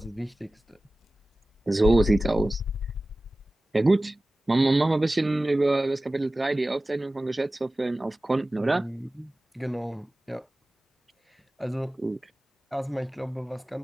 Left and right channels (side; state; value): both; normal; correlation 0.97